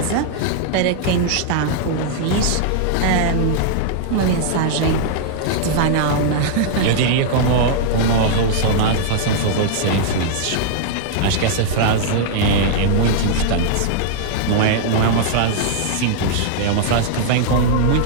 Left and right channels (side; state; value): both; different; correlation -0.01